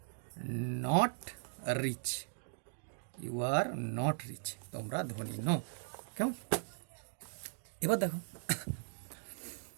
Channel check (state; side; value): silent; left; digital silence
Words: not rich, you are not rich, তোমরা ধনী নও। কেমন? এবার দেখো,